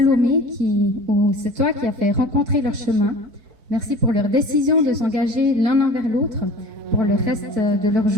c'est toi qui as fait rencontrer leur chemin. Merci pour leur décision de s'engager l'un envers l'autre pour le reste de leur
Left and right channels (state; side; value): late; left; 4.6 ms